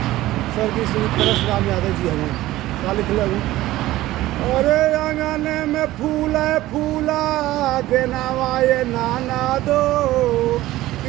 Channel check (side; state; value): left; quieter; 16.3 dB